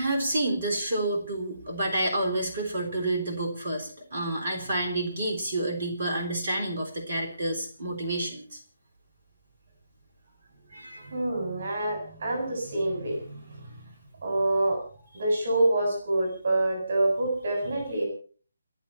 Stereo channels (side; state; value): both; inverted; correlation -0.81